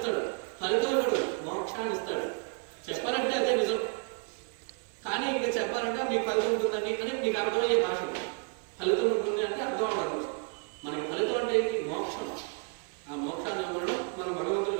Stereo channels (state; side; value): quieter; left; 36.3 dB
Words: ఫలితం ఇవ్వడు, మోక్షాన్ని ఇస్తాడు. చెప్పాలంటే అదే నిజం. కానీ ఇంకా చెప్పాలంటే మీకు ఫలితం ఉంటుందండి అని మీకు అర్థమయ్యే భాష. ఫలితం ఉంటుంది అంటే అర్థం అవ్వదు. మనకి ఫలితం అంటే ఏంటి? మోక్షం. ఆ మోక్షాన్ని అవ్వడం మనం భగవంతుడు